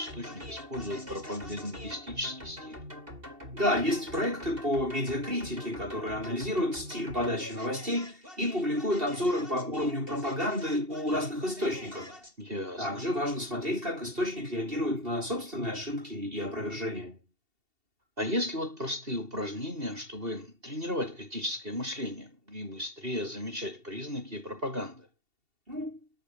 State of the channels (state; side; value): late; left; 2.7 ms